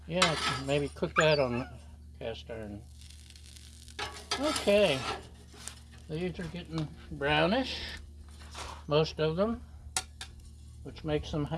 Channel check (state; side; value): identical; both; correlation 1.00